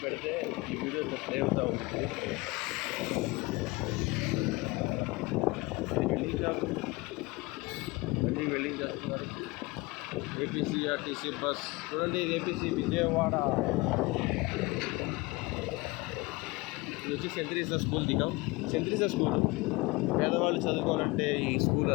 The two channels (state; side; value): quieter; right; 23.6 dB